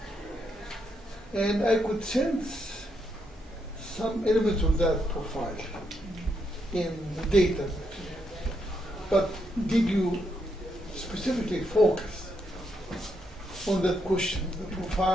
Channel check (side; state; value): both; normal; correlation 0.79